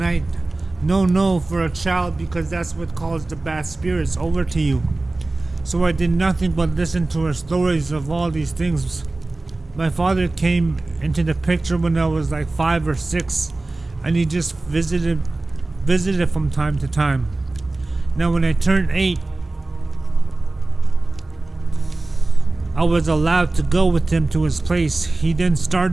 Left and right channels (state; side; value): quieter; left; 3.1 dB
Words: No for a child, because that's what calls the bad spirits over to you. So I did nothing but listen to her stories of all these things. My father came into the picture when I was like 5 or 6, and he just visited from time to time. Now when I turned 8, I was allowed to go with him to his place. He then